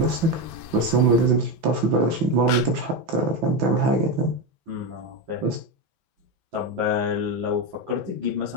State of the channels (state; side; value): late; left; 6.0 ms